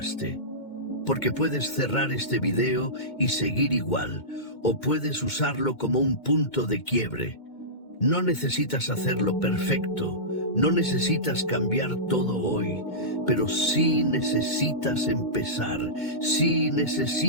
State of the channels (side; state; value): right; late; 2.2 ms